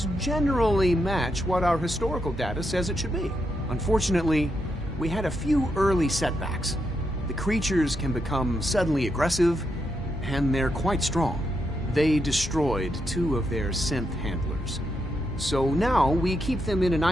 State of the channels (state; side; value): normal; both; correlation 0.82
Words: generally match what our historical data says it should be. Unfortunately, we had a few early setbacks. The creatures can become suddenly aggressive, and they're quite strong. They destroyed 2 of their synth handlers. So now we keep them in an